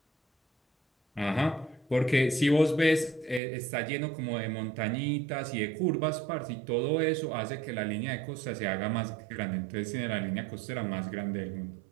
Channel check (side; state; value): left; drops out; at 3.4 s